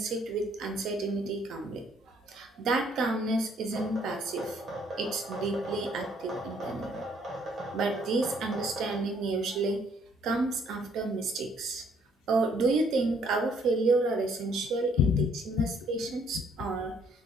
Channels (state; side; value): normal; both; correlation 0.65